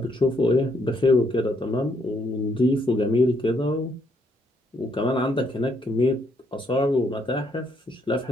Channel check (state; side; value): normal; both; correlation 0.72